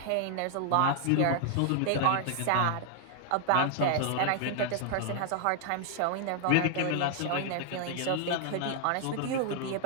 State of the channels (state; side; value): different; both; correlation 0.00